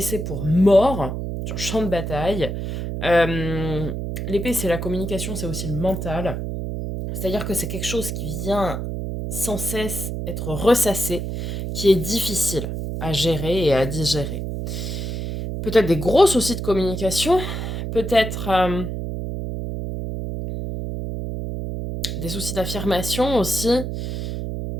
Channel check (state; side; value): noise; right; hum, 4 dB below the sound